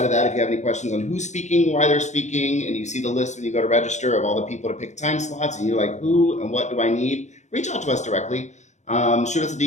of that, if you have any questions on who's speaking, why they're speaking, and you see the list when you go to register of all the people to pick time slots, and you're like, who and what do I need? Reach out to us directly. Shoot us a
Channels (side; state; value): right; late; 0.34 ms